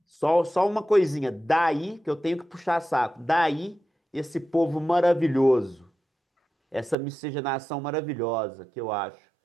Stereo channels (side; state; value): left; drops out; at 7.0 s